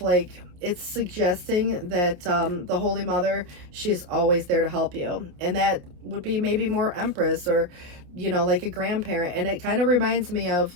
it's suggesting that the Holy Mother, she's always there to help you. And that would be maybe more Empress, or like a grandparent. And it kind of reminds me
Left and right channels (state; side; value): late; left; 28 ms